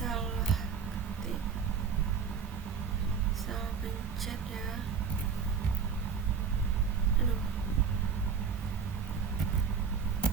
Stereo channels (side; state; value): left; quieter; 6.3 dB